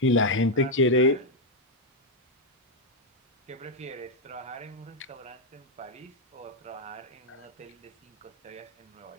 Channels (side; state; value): both; normal; correlation 0.02